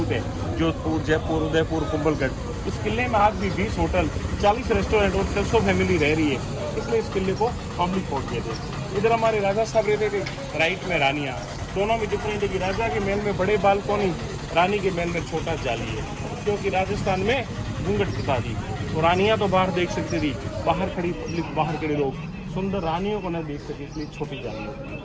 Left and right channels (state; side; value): identical; both; correlation 1.00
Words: है, जोधपुर, जयपुर, उदयपुर, कुंभलगढ़। इस किले में आज भी 20 होटल, 40 रेस्टोरेंट और 600 फैमिली रह रही है, इसलिए इस किले को पब्लिक फोर्ट कहते हैं। इधर हमारे राजा साहब रहते थे, राइट में रानियाँ। दोनों में डिफरेंट है कि राजा के महल में बड़े बालकोनी, रानी के महल में छोटा जाली है, क्योंकि राजस्थान में घूंघट प्रथा थी। तो रानियाँ तो बाहर देख सकती थी, बाहर खड़ी पब्लिक, बाहर खड़े लोग सुंदर रानियों को न देख सके, इसलिए छोटी जाली होती